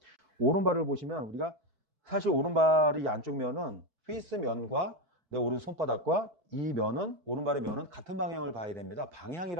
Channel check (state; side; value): late; left; 4.6 ms